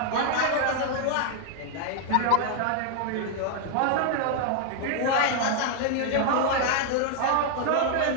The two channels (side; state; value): both; different; correlation 0.00